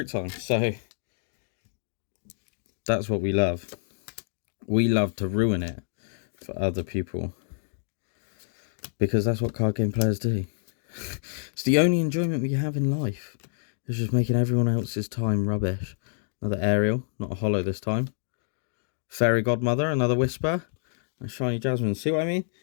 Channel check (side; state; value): right; silent; digital silence